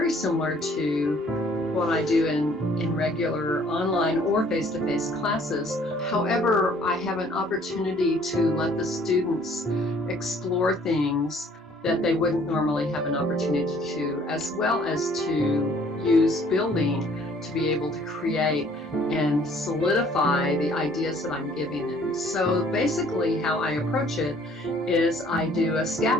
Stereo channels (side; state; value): both; normal; correlation 0.58